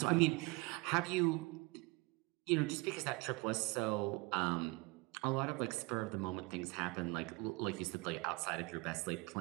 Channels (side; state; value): left; quieter; 25.2 dB